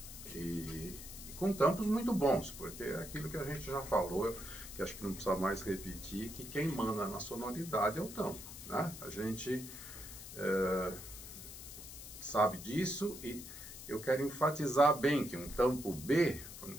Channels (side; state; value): left; noise; hiss, 12 dB below the sound